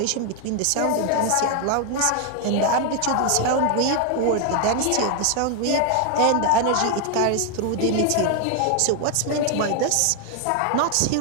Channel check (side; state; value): both; different; correlation 0.00